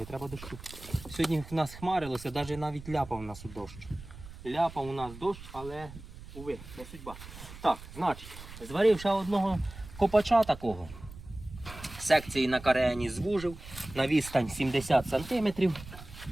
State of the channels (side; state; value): right; noise; rumble, 15 dB below the sound